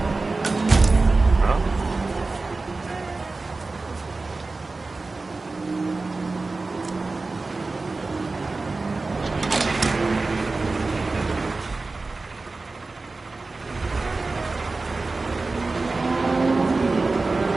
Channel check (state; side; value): quieter; left; 3.6 dB